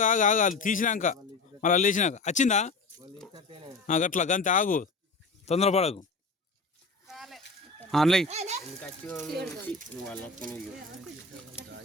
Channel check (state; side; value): quieter; right; 3.8 dB